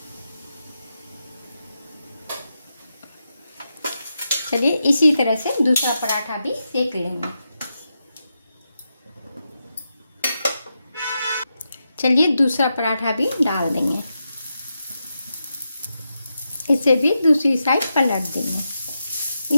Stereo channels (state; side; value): inverted; both; correlation -0.87